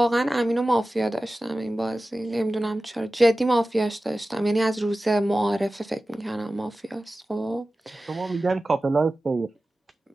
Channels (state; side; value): normal; both; correlation 0.96